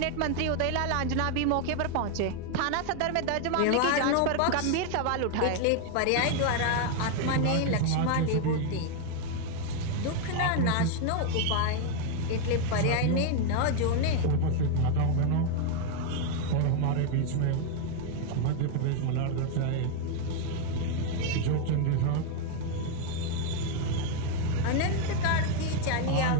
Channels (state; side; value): different; both; correlation 0.01